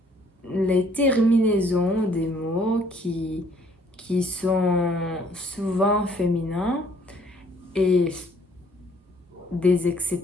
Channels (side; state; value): both; normal; correlation 0.61